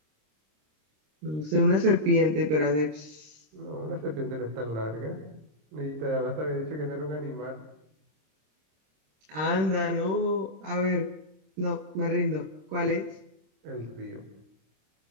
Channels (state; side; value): late; left; 26 ms